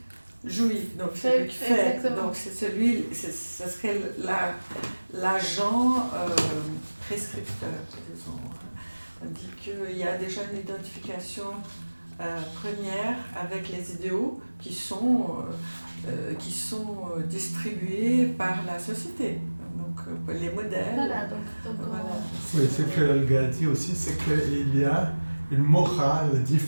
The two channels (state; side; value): inverted; both; correlation -1.00